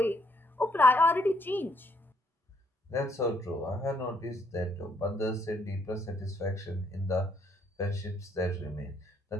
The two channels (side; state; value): both; normal; correlation 0.70